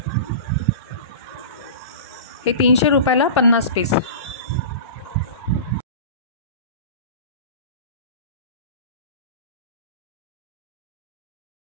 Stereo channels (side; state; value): both; inverted; correlation -0.33